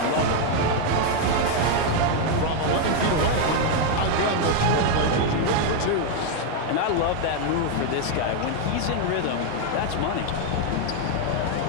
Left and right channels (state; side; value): different; both; correlation 0.01